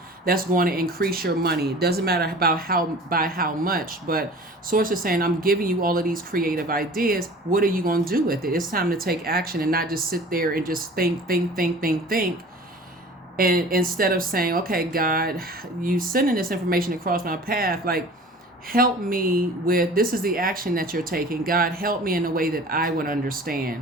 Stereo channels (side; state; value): both; normal; correlation 0.43